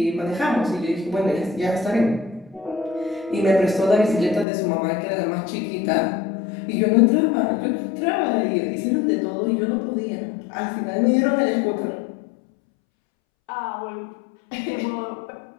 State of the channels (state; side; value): drops out; right; at 4.5 s